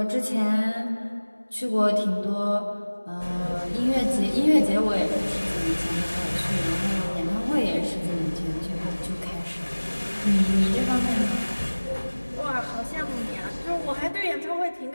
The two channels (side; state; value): both; inverted; correlation -1.00